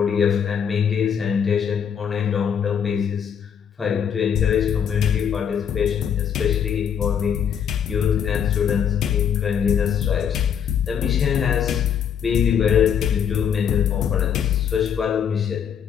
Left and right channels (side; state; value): right; quieter; 8.1 dB